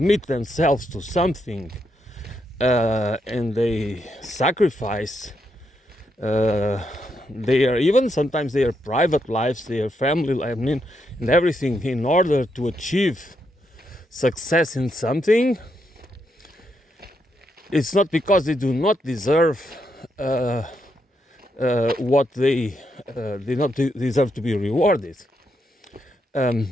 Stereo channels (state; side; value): normal; both; correlation 0.80